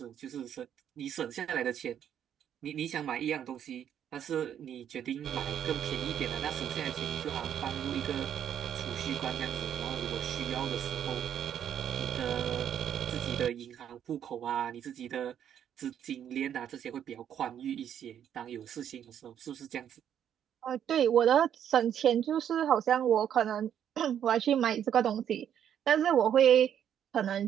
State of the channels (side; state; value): left; quieter; 9.5 dB